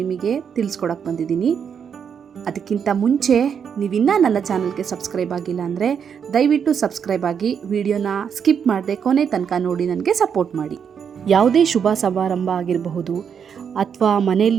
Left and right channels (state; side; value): quieter; left; 7.3 dB